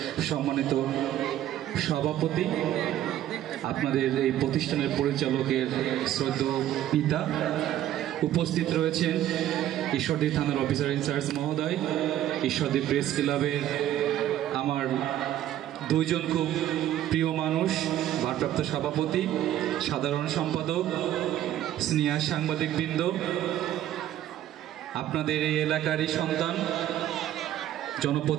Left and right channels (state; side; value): quieter; left; 12.4 dB